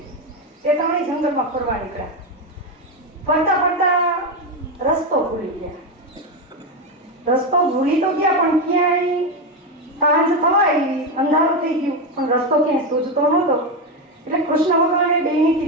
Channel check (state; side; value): normal; both; correlation 0.11